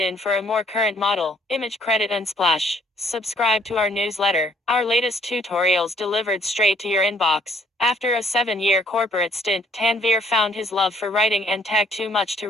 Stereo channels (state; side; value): normal; both; correlation 0.63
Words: for a more current model. Image Credit Unsplash. Subscribe to our newsletter. Our latest tutorials delivered straight to your inbox. After a 7-year corporate stint, Tanvir found his love for writing and tech too much to